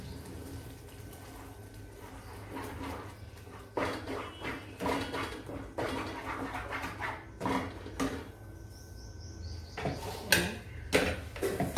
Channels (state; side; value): identical; both; correlation 1.00